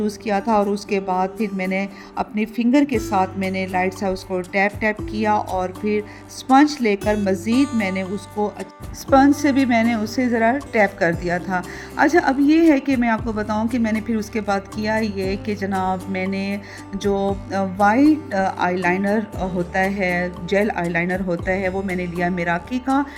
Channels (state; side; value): identical; both; correlation 1.00